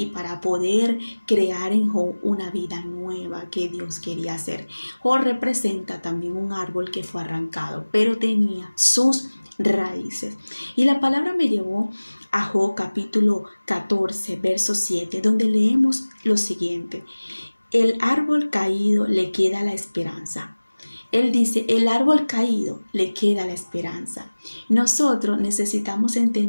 para poder crear en Job una vida nueva que Dios quería hacer. Job representa también un árbol que fue arrancado, pero tenía sus raíces. Y la palabra me llevó a Job capítulo 14, verso 7, donde leemos lo siguiente: el árbol caído le queda la esperanza. Él dice, el árbol caído le queda la esperanza. Nosotros necesitamos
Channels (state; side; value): inverted; both; correlation -1.00